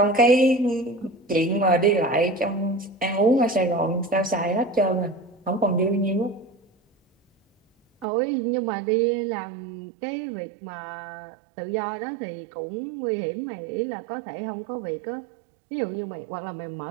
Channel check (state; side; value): drops out; left; at 8.1 s